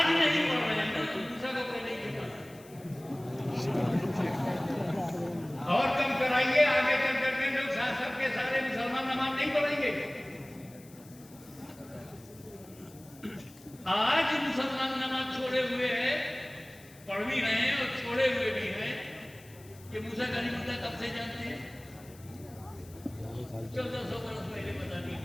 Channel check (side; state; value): left; noise; hiss, 23 dB below the sound